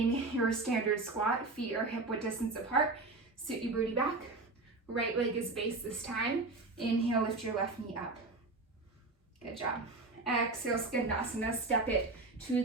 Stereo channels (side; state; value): left; quieter; 3.4 dB